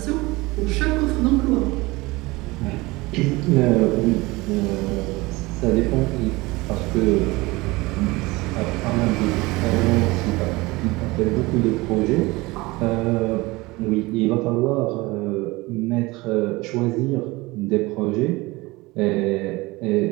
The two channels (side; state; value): left; quieter; 22.1 dB